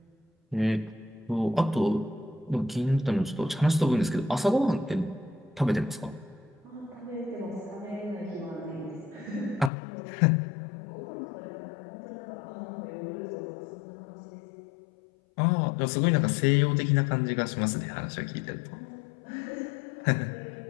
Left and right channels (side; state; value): right; drops out; at 9.7 s